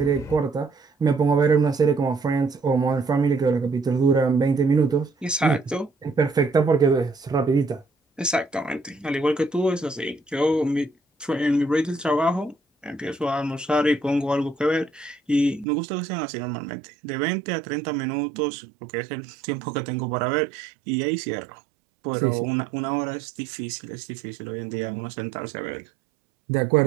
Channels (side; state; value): left; drops out; at 15.7 s